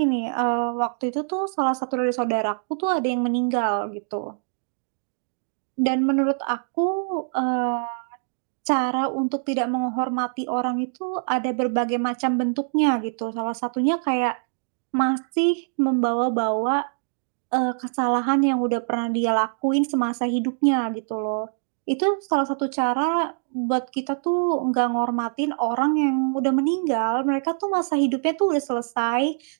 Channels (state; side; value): silent; left; digital silence